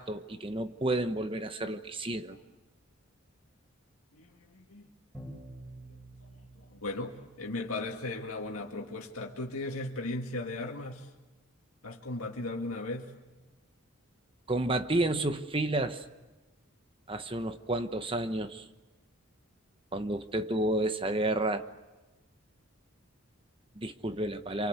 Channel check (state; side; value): normal; both; correlation 0.45